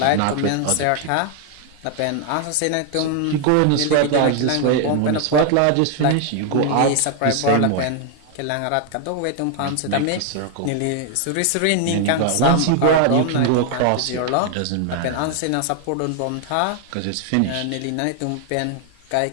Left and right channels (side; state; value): both; different; correlation 0.00